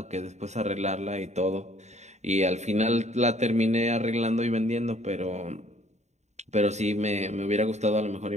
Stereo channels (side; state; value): left; late; 0.33 ms